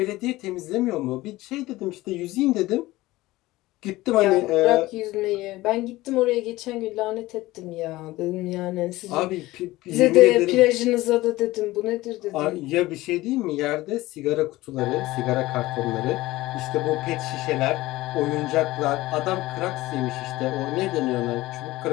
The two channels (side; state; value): right; quieter; 18.3 dB